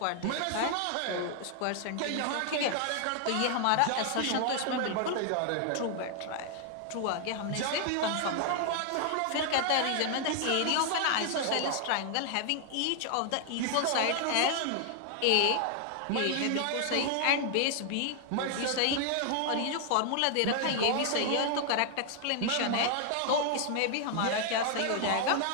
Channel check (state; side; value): different; both; correlation 0.00